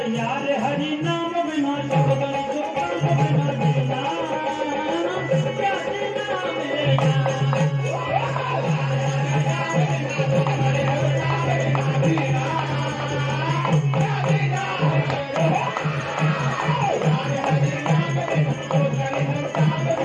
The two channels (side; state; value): both; identical; correlation 1.00